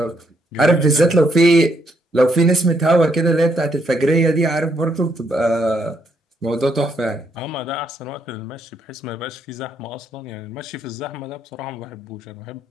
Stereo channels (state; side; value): normal; both; correlation 0.75